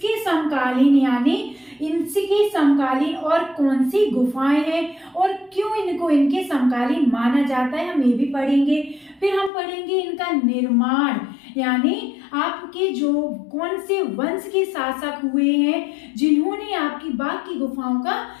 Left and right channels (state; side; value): drops out; right; at 9.5 s